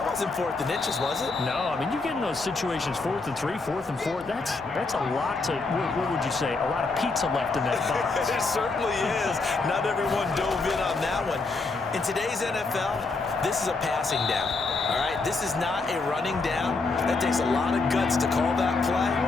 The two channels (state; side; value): quieter; right; 3.8 dB